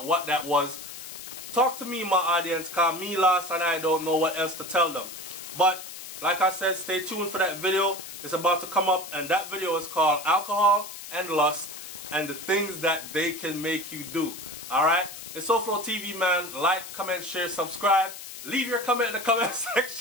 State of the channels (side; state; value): left; noise; hiss, 12 dB below the sound